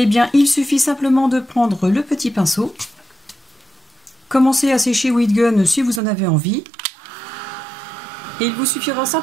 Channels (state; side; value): drops out; left; at 6.0 s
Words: bien il suffit simplement de prendre le petit pinceau, commencez à sécher Wheat Gun si vous en avez envie, et il vous suffira